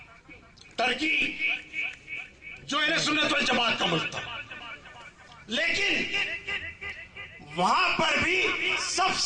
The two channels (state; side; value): identical; both; correlation 1.00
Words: ٹرکی جو اہل سنت والجماعت کا ملک تھا, لیکن وہاں پر بھی سب